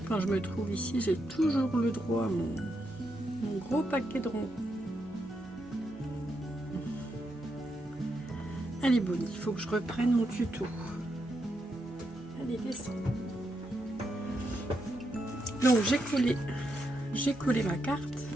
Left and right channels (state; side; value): normal; both; correlation 0.82